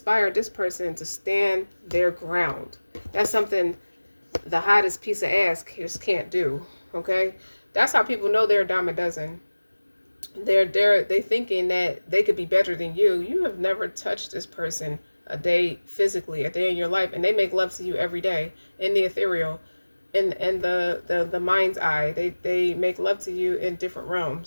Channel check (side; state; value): both; inverted; correlation -1.00